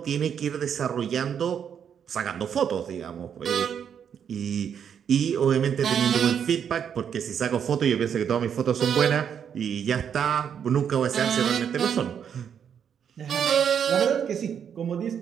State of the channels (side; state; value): left; quieter; 8.0 dB